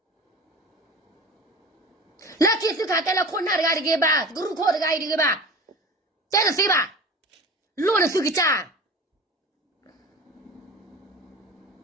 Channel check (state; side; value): normal; both; correlation 0.35